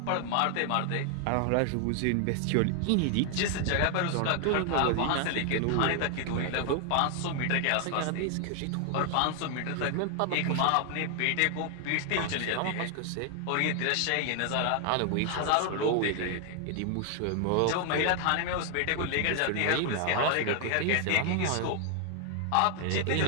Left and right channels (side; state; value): both; different; correlation 0.00